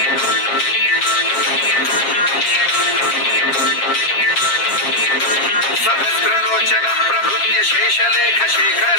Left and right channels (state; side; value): late; right; 7.4 ms